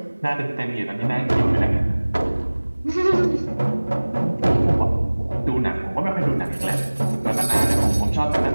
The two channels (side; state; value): both; inverted; correlation -1.00